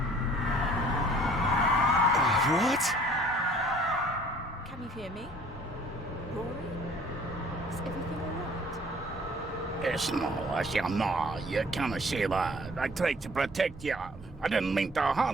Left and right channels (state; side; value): normal; both; correlation 0.53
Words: hear me? Rory? Is everything alright? It's no, you can't say that. I tried to protect you. I didn't mean to